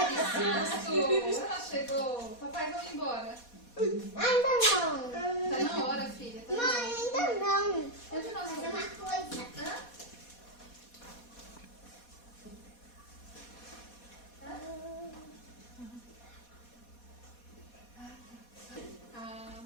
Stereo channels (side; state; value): right; late; 4.2 ms